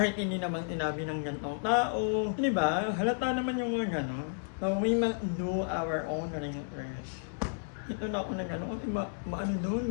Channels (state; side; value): silent; right; digital silence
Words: hindi naman sinabi ng gantong tao. Di ba? Halata naman yung mga gano'n. So we must do our own research. Ito na ako na gano'n kasi doon,